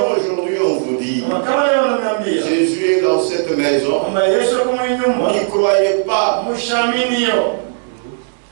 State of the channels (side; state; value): left; silent; digital silence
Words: aujourd'hui on vous dit, Jésus est dans cette maison, n'y croyez pas.